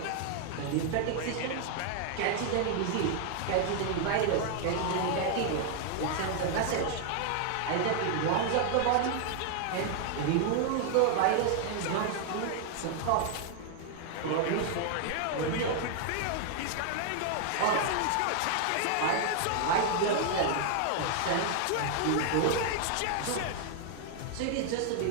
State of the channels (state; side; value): different; both; correlation 0.00